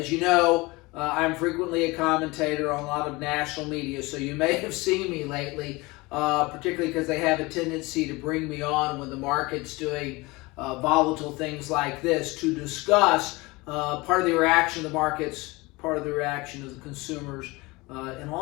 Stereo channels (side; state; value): right; quieter; 23.3 dB